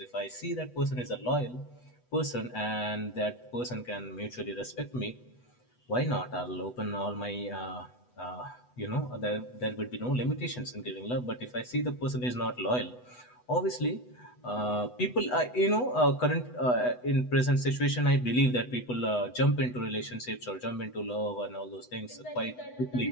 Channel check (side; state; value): right; late; 8.1 ms